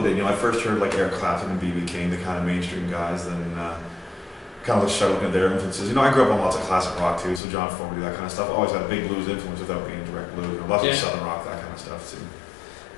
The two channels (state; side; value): drops out; right; at 7.4 s